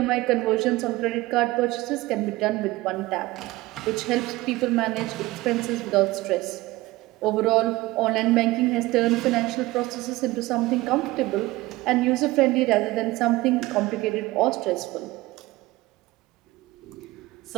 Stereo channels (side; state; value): left; quieter; 19.3 dB